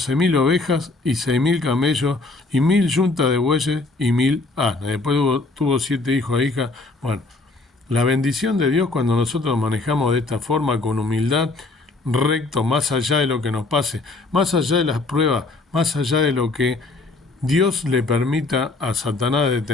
ovejas y 6.000 camellos y 1.000 yuntas de bueyes y 1.000 asnas. Después tuvo 7 hijos e hijas. Bueno, la bendición de Dios cuando nosotros manejamos de esta forma, con humildad, recto, más allá de lo que nos pase, más allá de las pruebas, más allá de lo que Dios le permita a Satanás de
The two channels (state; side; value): quieter; right; 3.3 dB